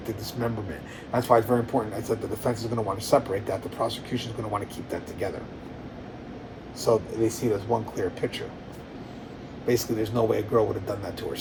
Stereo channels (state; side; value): identical; both; correlation 1.00